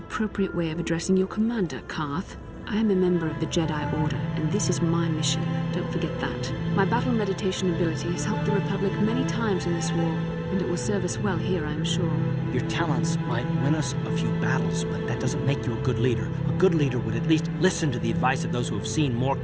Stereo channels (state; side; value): identical; both; correlation 1.00